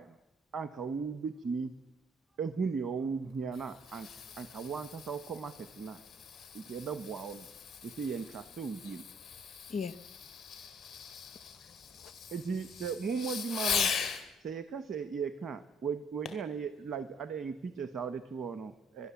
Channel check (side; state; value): both; normal; correlation 0.62